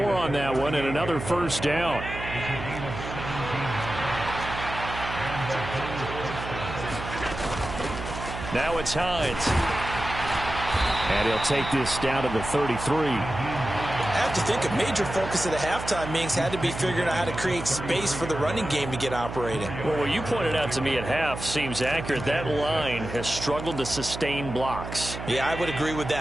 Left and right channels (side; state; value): right; noise; hum, 8 dB below the sound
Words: on that one and another first down. Now it's Hines. And he'll take this down to the 33. I have to think a major focus of the halftime meetings had to be figuring out how to create space for the running game to get operating. Well, what you pointed out to me at half seems accurate. That line has struggled to sustain blocks. Yeah, I would agree with